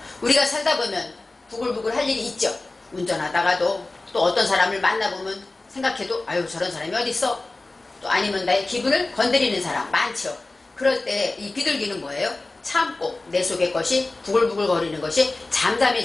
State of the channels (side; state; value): right; quieter; 3.1 dB